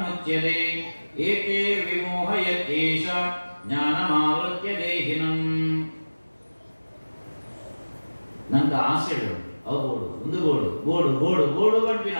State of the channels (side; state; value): both; inverted; correlation -1.00